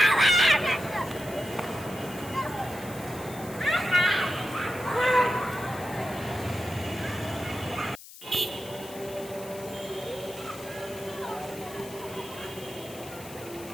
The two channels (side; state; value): left; noise; hiss, 16 dB below the sound